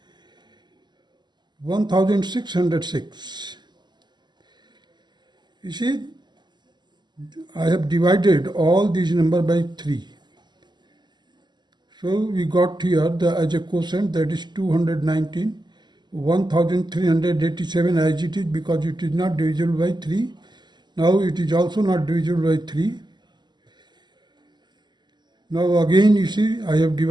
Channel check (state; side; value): late; left; 0.21 ms